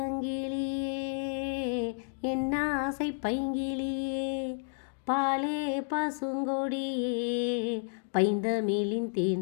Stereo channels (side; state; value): right; silent; digital silence